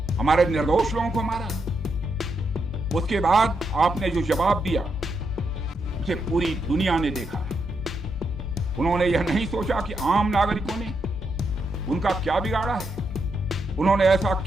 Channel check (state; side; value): normal; both; correlation 0.81